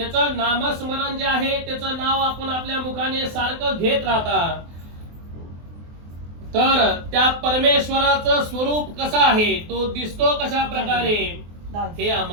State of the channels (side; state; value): left; late; 24 ms